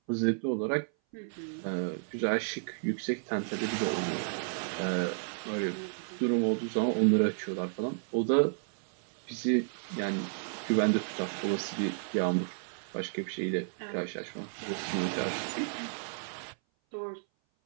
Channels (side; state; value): left; silent; 56 dB below the other